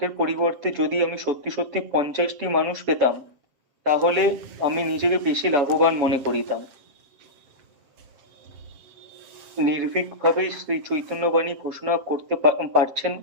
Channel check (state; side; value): late; left; 7.5 ms